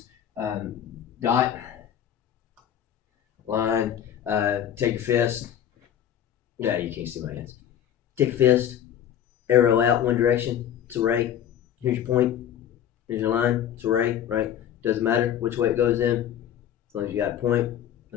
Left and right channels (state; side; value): quieter; right; 10.0 dB